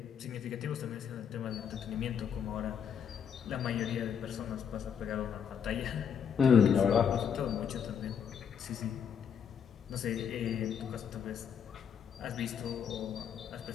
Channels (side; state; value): right; quieter; 7.6 dB